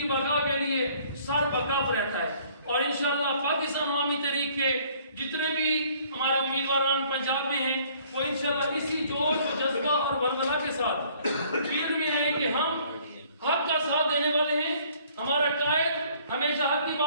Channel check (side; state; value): both; inverted; correlation -0.59